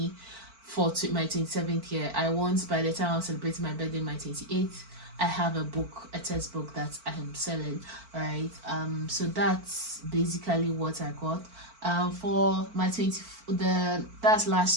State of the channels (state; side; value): late; left; 4.5 ms